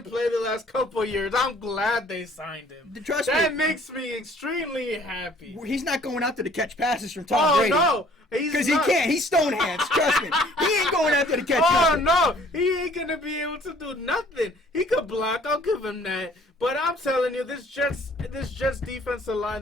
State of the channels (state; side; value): normal; both; correlation 0.56